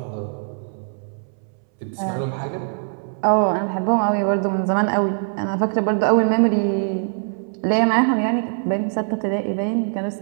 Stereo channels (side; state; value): left; silent; 63 dB below the other